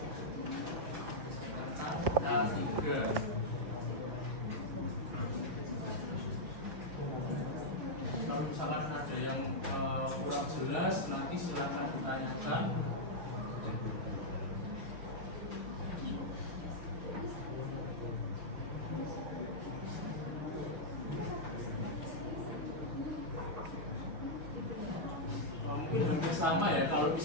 Rekan A3. Kalau misalkan ada yang kurang jelas, nanti silakan ditanyakan. Mungkin hampir sama ya, kalau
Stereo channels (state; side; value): late; left; 6.9 ms